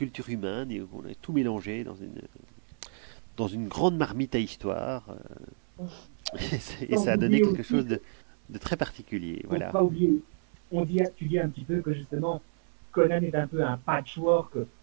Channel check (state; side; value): silent; left; 58 dB below the other